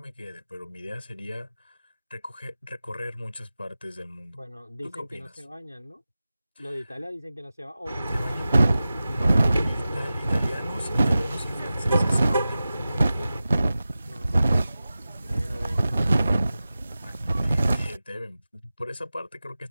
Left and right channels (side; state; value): both; inverted; correlation -0.94